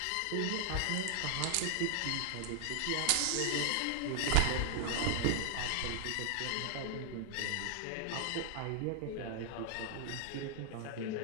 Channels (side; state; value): both; different; correlation 0.00